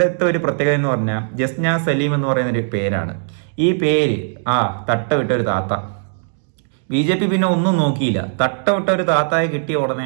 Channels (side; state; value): left; silent; digital silence